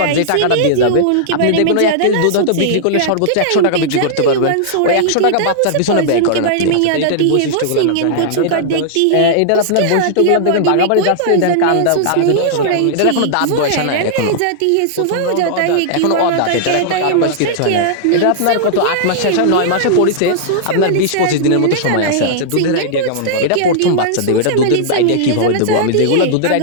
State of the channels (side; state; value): both; different; correlation -0.01